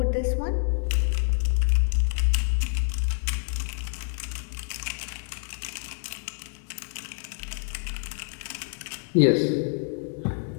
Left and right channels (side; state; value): right; silent; digital silence